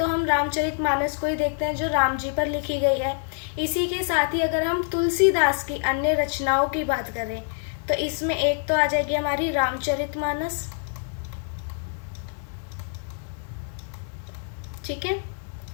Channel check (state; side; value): silent; right; 60 dB below the other